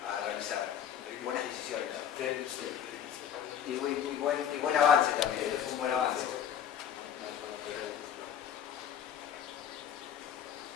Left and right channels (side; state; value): right; quieter; 9.2 dB